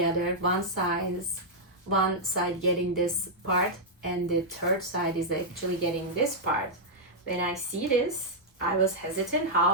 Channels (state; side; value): normal; both; correlation -0.06